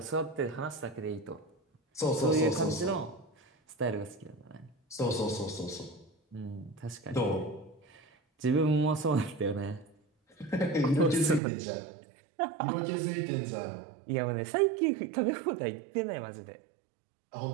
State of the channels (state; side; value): drops out; left; at 11.4 s